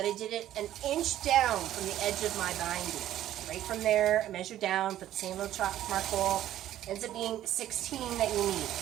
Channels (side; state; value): left; quieter; 12.7 dB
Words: I did it an inch down from the edge of my binding. Right from there, I measured down, put the same little chalk mark hole. Ends up being 16 that you need.